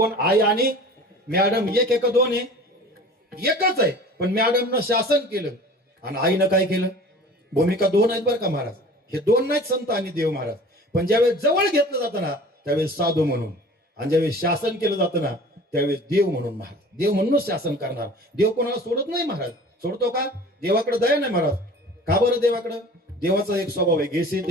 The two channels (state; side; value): normal; both; correlation 0.43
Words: आई आणि मॅडम एक का 2 आहे एकच आहे. पण मॅडमनं शासन केलं आणि आईनं काय केलं भूमिका 2 आहेत बरं का महाराज. हे 2 नाहीत संत आणि देव महाराज. पण ज्यावेळेस जवळ घेतलं जातं ना त्यावेळेस साधू म्हणून आणि ज्यावेळेस शासन केलं जातं ना त्यावेळेस देव म्हणून महाराज. देव म्हणूनच शासन करणार. देव कोणाला सोडत नाही महाराज. सोडतो का देवाकडे दया नाही महाराज. का बरं देवाकडं देवाचा एक स्वभाव आहे घेसे